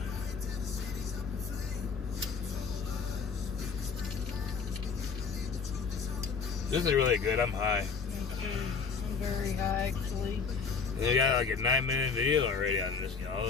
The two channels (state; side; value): quieter; right; 5.4 dB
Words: This is really good. I'm high. I'm very high, actually. We got like a 9-minute video already on this, y'all.